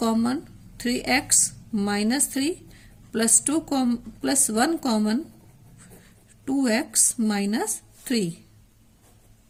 3x minus 3 plus plus 1 common, 2x minus 3.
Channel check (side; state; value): both; identical; correlation 1.00